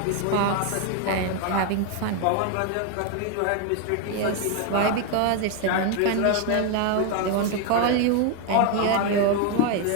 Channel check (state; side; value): different; both; correlation 0.01